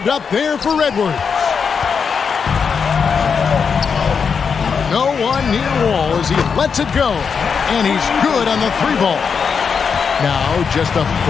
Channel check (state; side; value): quieter; right; 6.1 dB